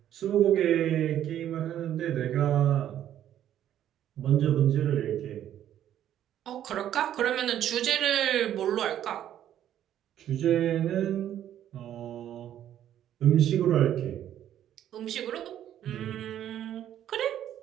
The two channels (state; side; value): quieter; left; 11.1 dB